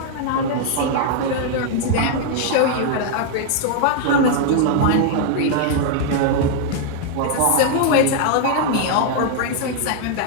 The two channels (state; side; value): different; both; correlation 0.00